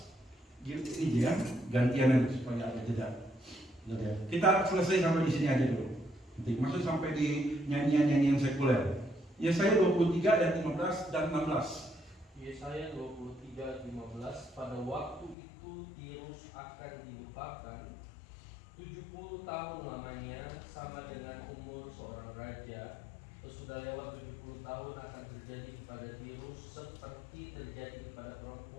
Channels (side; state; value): right; drops out; at 15.4 s